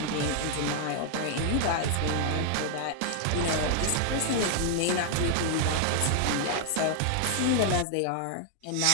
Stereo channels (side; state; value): both; different; correlation 0.00